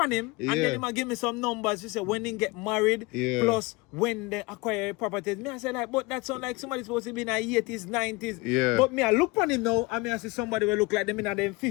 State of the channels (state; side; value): quieter; right; 24.3 dB